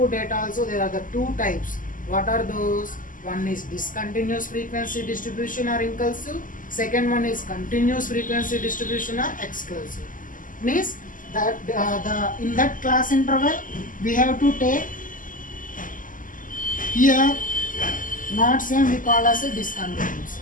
data also there are the two types. What are those? One is discontinuous frequency distribution or inclusive. Second one is continuous frequency distribution or exclusive. Means that in that class interval we have to take here not same we call as a discontinuous.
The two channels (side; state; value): right; late; 0.38 ms